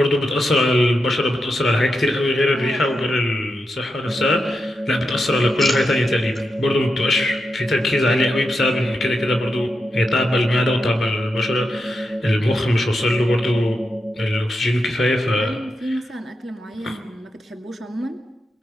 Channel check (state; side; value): normal; both; correlation 0.86